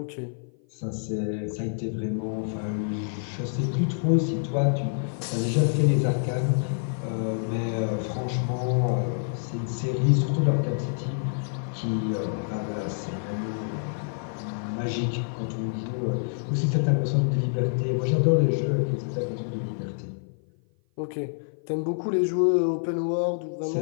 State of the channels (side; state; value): right; silent; 55 dB below the other